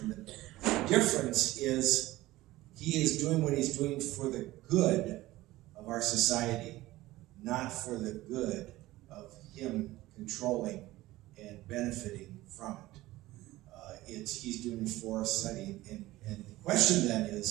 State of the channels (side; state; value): left; quieter; 17.5 dB